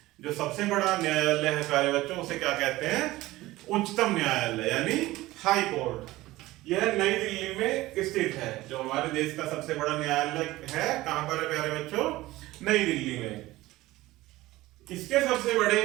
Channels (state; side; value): quieter; left; 17.9 dB